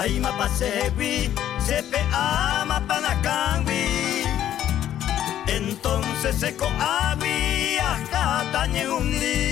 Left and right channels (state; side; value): quieter; right; 11.4 dB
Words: pasewi, sepe ama panacangui. Entonces se coavi, ajatañe